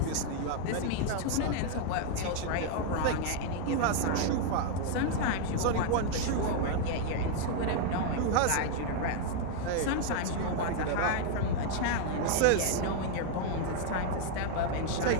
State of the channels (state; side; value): different; both; correlation 0.00